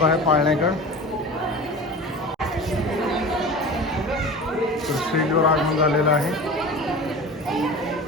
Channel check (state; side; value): normal; both; correlation 0.35